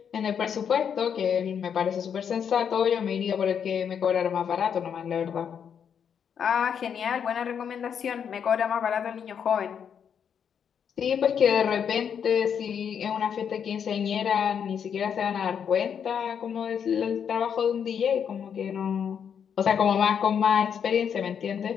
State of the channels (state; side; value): quieter; right; 7.7 dB